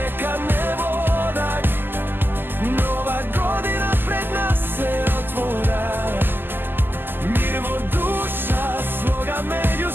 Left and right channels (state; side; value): late; left; 0.095 ms